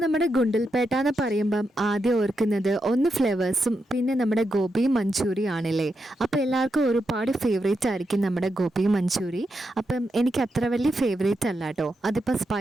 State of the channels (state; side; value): normal; both; correlation 0.85